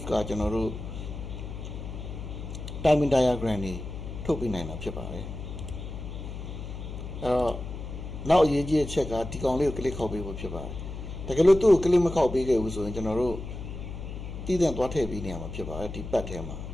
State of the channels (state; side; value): noise; left; hum, 8 dB below the sound